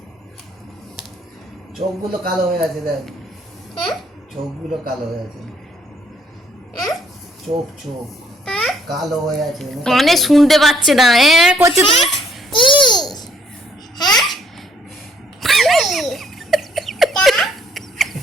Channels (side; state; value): both; normal; correlation 0.67